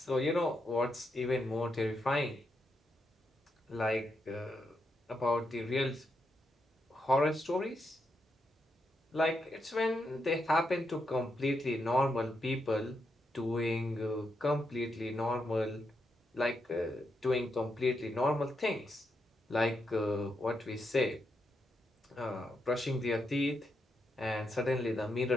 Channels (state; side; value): normal; both; correlation 0.82